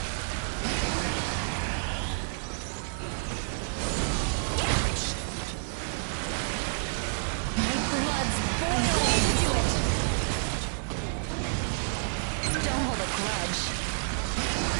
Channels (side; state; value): left; silent; digital silence